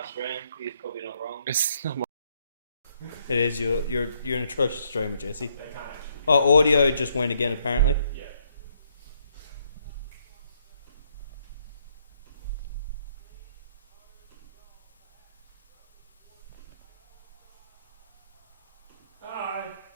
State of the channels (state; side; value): inverted; both; correlation -0.71